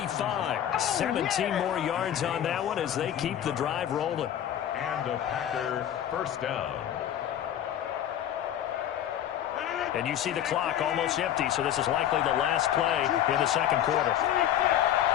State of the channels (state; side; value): quieter; right; 10.8 dB